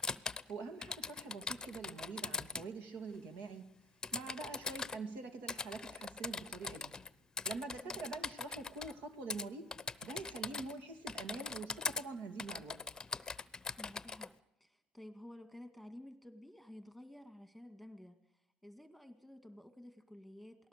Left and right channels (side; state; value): both; normal; correlation 0.38